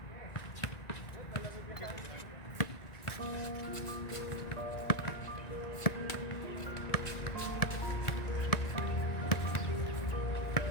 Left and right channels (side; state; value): right; late; 1.9 ms